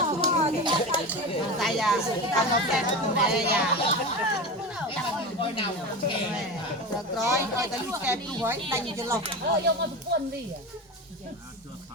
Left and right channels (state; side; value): normal; both; correlation 0.25